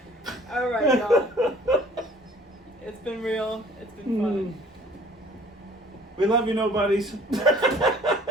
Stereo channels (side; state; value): both; normal; correlation 0.53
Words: All right, y'all. It's been real. It's been fun. We love you, nobodies.